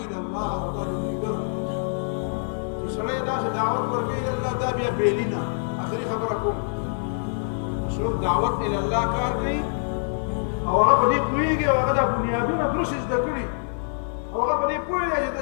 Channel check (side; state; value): right; silent; digital silence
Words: د الله او دا د ملګرو چې سړی داسې دعوت ورکوي د الله دا بیا بېلي نه آخري خبره کوم څوک دعوت الله کار کوي او هغه په دې پوهېږي او هغه دا بنیادونه درست زده کړي او هغه په دې پوهېږي چې د